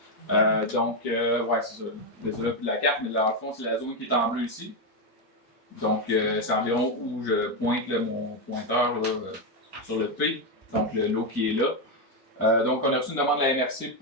Ouais, c'est ça. Désolé pour la carte, mais dans le fond, c'est la zone qui est en bleu ici. Donc, c'est environ où je pointe là, mon pointeur là, sur le P, donc le lot qui est là. Donc, on a reçu une demande de la MRC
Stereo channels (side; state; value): both; normal; correlation 0.06